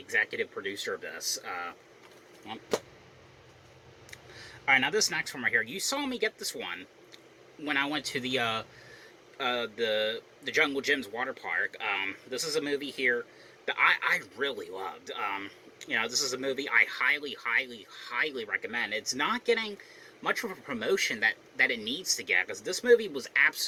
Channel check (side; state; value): both; identical; correlation 1.00